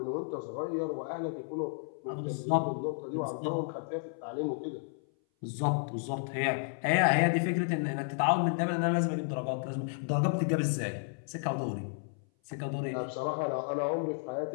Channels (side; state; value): right; silent; 56 dB below the other